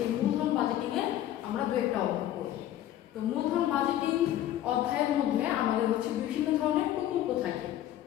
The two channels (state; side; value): quieter; right; 12.5 dB